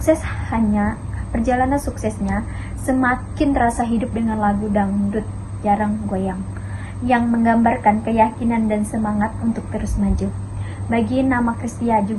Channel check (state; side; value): identical; both; correlation 1.00